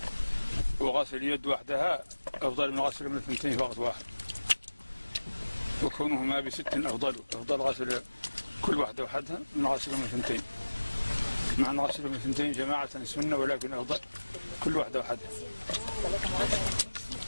وغسل اليد وحدها أفضل من غسل من الثنتين في وقت واحد، وكونهما بست أفضل غسل كل واحدة وحدها من غسل من الثنتين، مع أن غسل من الثنتين جماعة سنة، ولكن أفضل كل واحدة وحدها.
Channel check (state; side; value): inverted; both; correlation -1.00